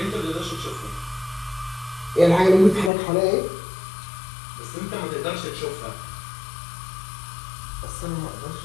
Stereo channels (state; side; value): drops out; right; at 2.9 s